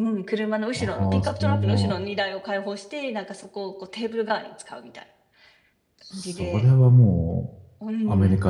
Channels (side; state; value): both; identical; correlation 1.00